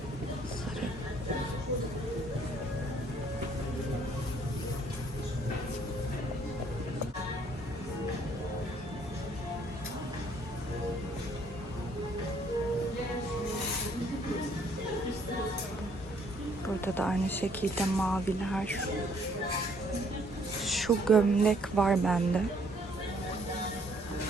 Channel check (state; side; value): normal; both; correlation 0.64